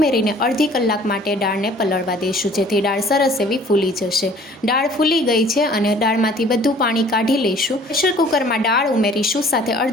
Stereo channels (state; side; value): normal; both; correlation 0.53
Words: અડધી કલાક માટે દાળને પલળવા દઈશું, જેથી દાળ સરસ એવી ફૂલી જશે। દાળ ફૂલી ગઈ છે અને દાળમાંથી બધું પાણી કાઢી લઈશું। પ્રેશર કુકરમાં દાળ ઉમેરીશું, સાથે